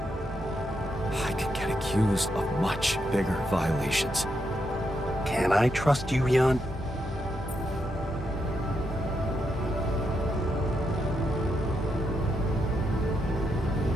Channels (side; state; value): both; normal; correlation 0.82